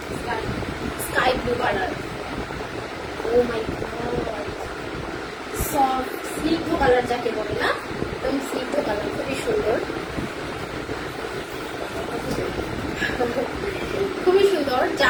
sky blue colour. O my god, soft স্নিগ্ধ কালার যাকে বলে, না? একদম স্নিগ্ধ কালার, খুবই সুন্দর, খুবই সুন্দর।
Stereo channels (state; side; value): identical; both; correlation 1.00